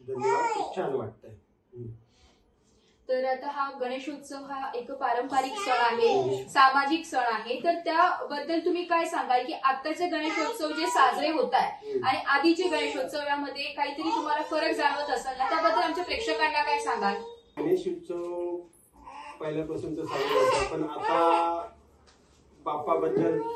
धन्यवाद, खूप छान वाटतंय। तर आता हा गणेशोत्सव हा एक पारंपरिक सण आहे, सामाजिक सण आहे, तर त्याबद्दल तुम्ही काय सांगाल की आताचे गणेशोत्सव जे साजरे होत आहे आणि आधीचे गणेशोत्सव यामध्ये काहीतरी तुम्हाला फरक जाणवत असेल ना, त्याबद्दल आमच्या प्रेक्षकांना काय सांगाल? गणेशोत्सव पहिल्यापासून तर साजरा होता, पण आता बाप्पाबद्दल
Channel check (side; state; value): both; identical; correlation 1.00